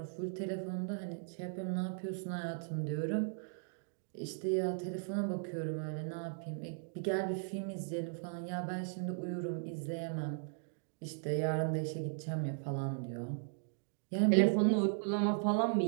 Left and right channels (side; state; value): left; silent; digital silence